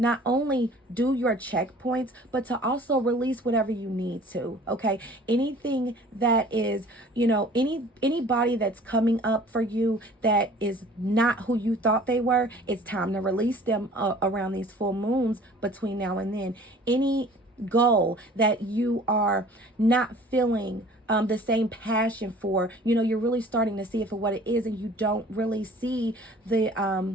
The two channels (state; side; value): normal; both; correlation 0.49